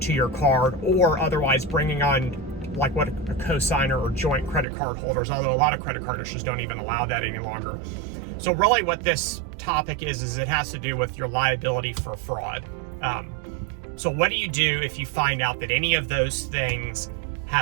to your card, or otherwise bringing on like what a cosigner or joint credit card holders, although a lot of credit card issuers don't even allow that any longer. So really what this topic is it has to do with your liability for fraud. So what do you do if you find out that any of those things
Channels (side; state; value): left; drops out; at 4.7 s